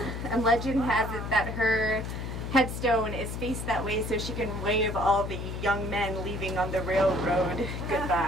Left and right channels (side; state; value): left; noise; hum, 5 dB below the sound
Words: and legend has it that her headstone is faced that way so she can wave all the young men leaving on the railroad